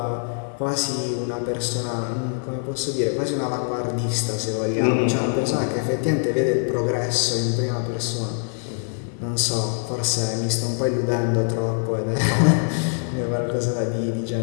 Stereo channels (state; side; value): silent; right; 63 dB below the other